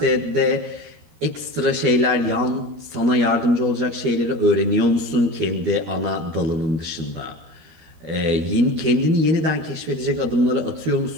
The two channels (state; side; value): late; left; 13 ms